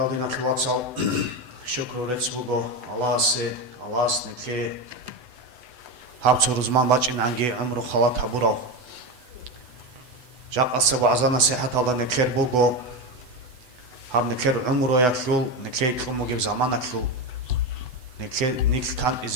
دينا كلواتسال شكر رتسبوغو الله سنكي هابتو رزمان باچين عنگي عمرو خلات حبورو جاق أصبو عزانا سيحة الله نكير بوغو هاب نكير عمرو يكلول نكي كلمو جيب زمان أكلول نيك كان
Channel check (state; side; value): late; left; 8.0 ms